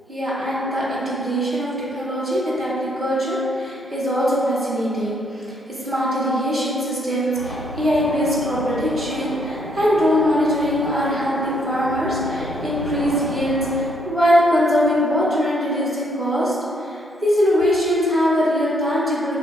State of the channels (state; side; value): normal; both; correlation 0.70